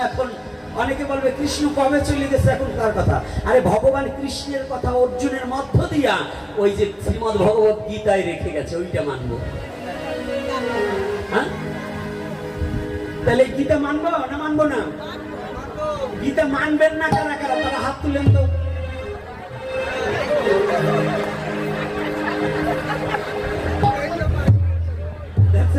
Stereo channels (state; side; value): identical; both; correlation 1.00